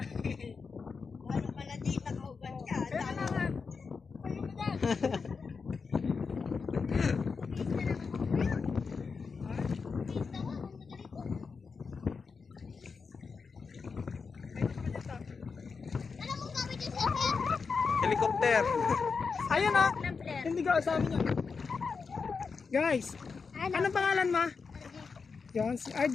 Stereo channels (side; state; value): right; quieter; 5.1 dB